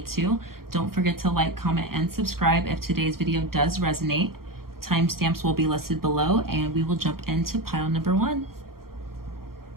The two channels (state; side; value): late; left; 0.93 ms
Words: to. Don't forget to like, comment, and subscribe if today's video does resonate. Timestamps will be listed below, and we will jump into pile number 1.